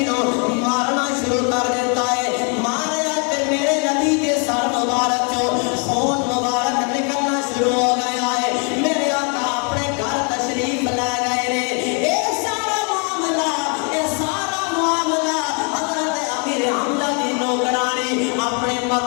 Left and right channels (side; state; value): right; quieter; 37.1 dB